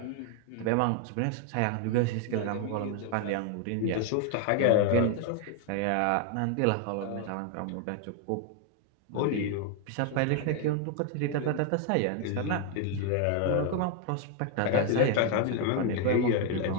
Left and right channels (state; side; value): different; both; correlation 0.01